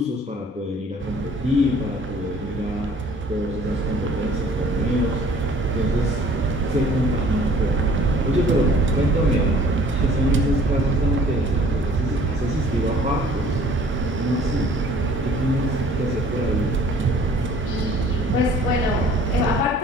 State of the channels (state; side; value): normal; both; correlation 0.53